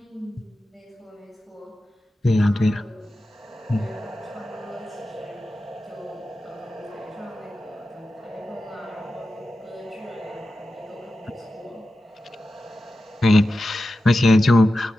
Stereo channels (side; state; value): both; normal; correlation 0.92